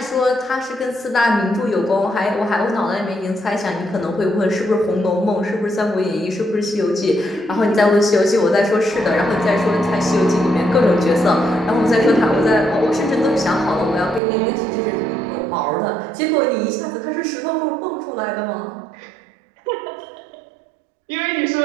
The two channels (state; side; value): drops out; left; at 14.2 s